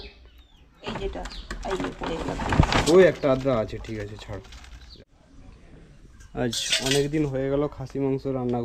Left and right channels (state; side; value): identical; both; correlation 1.00